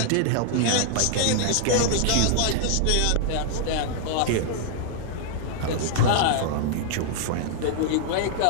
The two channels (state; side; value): different; both; correlation -0.01